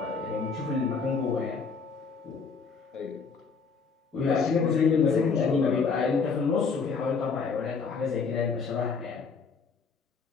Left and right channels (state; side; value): quieter; right; 5.2 dB